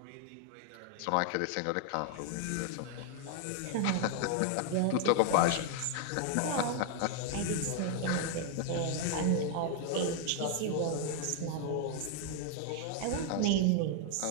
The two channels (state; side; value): different; both; correlation 0.00